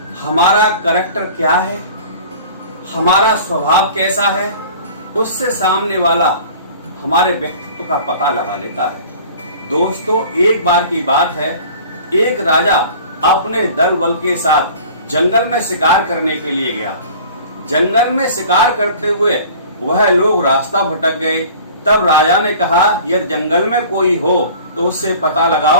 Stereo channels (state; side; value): inverted; both; correlation -0.45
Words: हमारा कैरेक्टर क्या है, हमारा स्वभाव कैसा है, उससे सामने वाला हमारे व्यक्तित्व का पता लगा लेता है। दोस्तों, एक बार की बात है, एक राजा अपने दल बल के साथ जंगल में शिकार करने के लिए गया। जंगल में शिकार करते हुए वह लोग रास्ता भटक गए। तब राजा ने कहा, यदि जंगल में कोई हो तो उससे पता